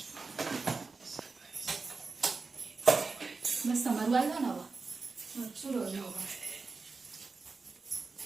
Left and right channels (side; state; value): left; quieter; 4.2 dB